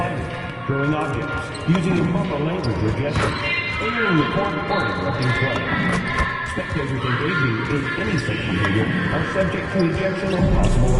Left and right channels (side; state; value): both; identical; correlation 1.00